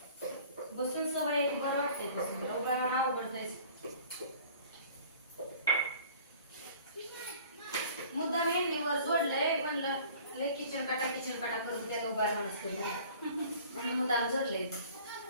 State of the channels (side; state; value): both; inverted; correlation -0.48